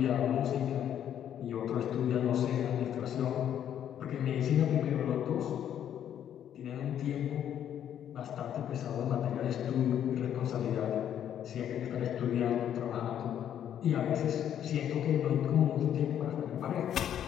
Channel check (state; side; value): quieter; right; 10.0 dB